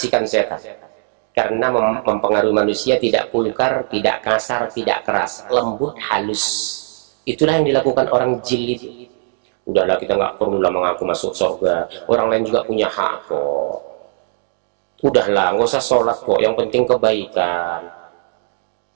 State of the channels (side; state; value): left; silent; 61 dB below the other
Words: setan? Karena mempengaruhi manusia tidak vulgar, tidak kasar, tidak keras, lembut, halus. Itulah yang dilakukan orang jil itu. Udahlah, kita nggak perlulah mengaku masuk surga. Orang lain juga punya hak kok. Udahlah, nggak usah sholat kok. Yang penting kebaikan.